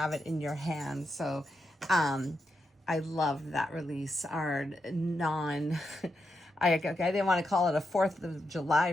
it in your hands. So I love that release, our non I didn't want to call it a 4th of July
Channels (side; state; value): both; normal; correlation 0.84